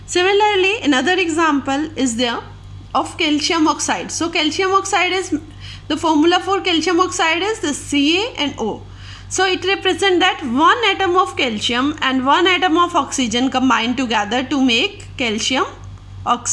Similarly, another example is there of calcium oxide. So calcium oxide is, the formula for calcium oxide is the CaNO. So it represents that 1 atom of calcium and 1 atom of oxygen combined together to make calcium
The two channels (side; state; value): both; identical; correlation 1.00